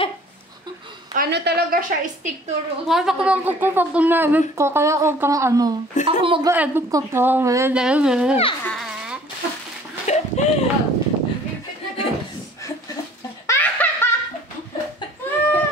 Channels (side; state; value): both; normal; correlation 0.52